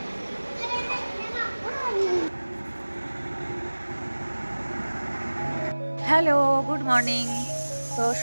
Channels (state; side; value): inverted; both; correlation -1.00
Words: Hello, good morning. তো